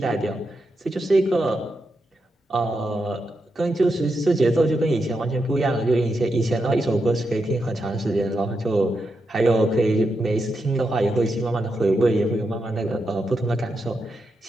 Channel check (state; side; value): normal; both; correlation 0.85